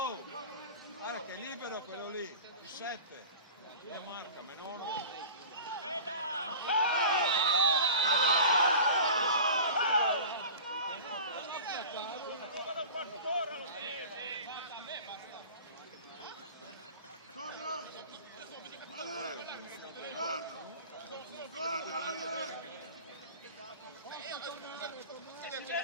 Guarda che è libero quello lì, il 7. Lo marca, Menone.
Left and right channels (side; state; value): both; inverted; correlation -0.38